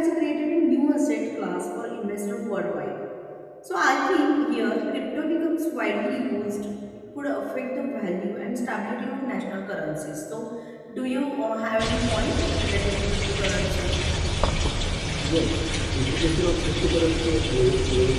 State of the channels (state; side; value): identical; both; correlation 1.00